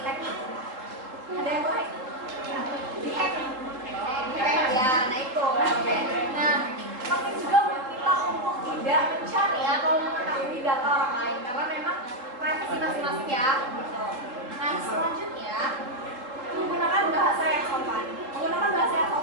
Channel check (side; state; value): left; late; 3.8 ms